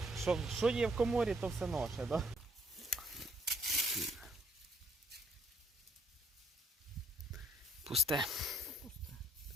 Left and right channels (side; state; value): both; normal; correlation 0.67